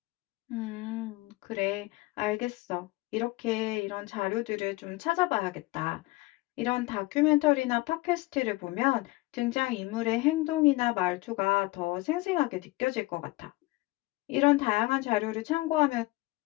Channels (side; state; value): right; quieter; 21.4 dB